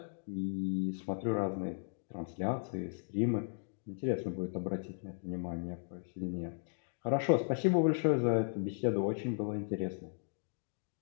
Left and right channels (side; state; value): right; silent; digital silence